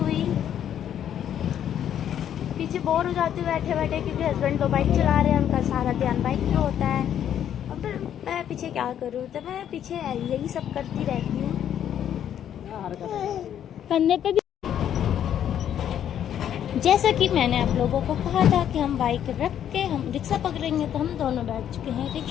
पीछे बोर हो जाती हूँ बैठे बैठे, क्योंकि हस्बैंड तो बाइक चला रहे हैं, उनका सारा ध्यान बाइक पे होता है। और फिर मैं पीछे क्या करूँ, तो मैं पीछे यही सब करती रहती हूँ। कंधे पे भी जैसा कि मैंने आप लोगों को कहा था कि हम बाइक रख के हम रिक्शा पकड़ेंगे, तो हम दोनों बैठ चुके हैं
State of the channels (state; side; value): quieter; right; 9.9 dB